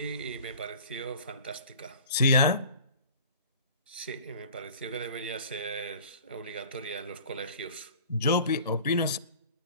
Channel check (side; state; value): both; inverted; correlation -0.44